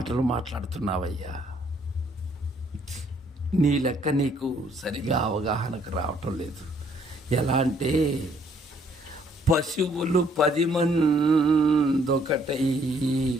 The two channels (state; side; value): normal; both; correlation 0.66